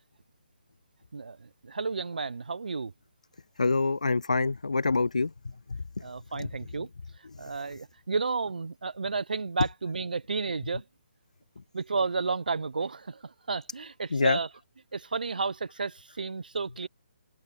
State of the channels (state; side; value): inverted; both; correlation -0.79